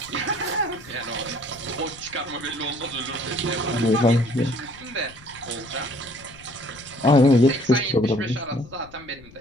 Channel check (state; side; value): noise; left; rumble, 22 dB below the sound